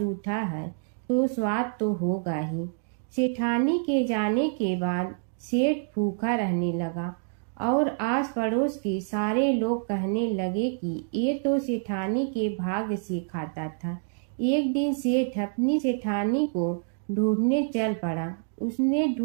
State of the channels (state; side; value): silent; left; digital silence